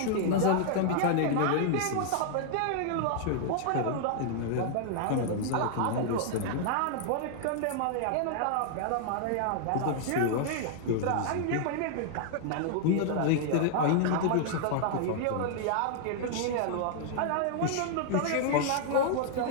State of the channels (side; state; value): both; different; correlation -0.01